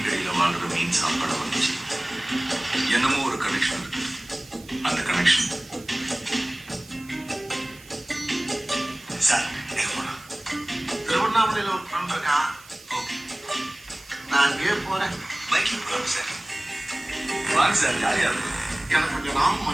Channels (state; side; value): noise; right; hiss, 23 dB below the sound